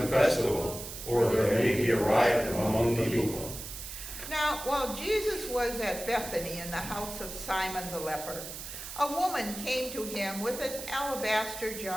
festival, or there may be a riot among the people." Now, while Jesus was at Bethany in the house of Simon the leper, a woman came to him with an alabaster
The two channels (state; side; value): noise; right; hiss, 9 dB below the sound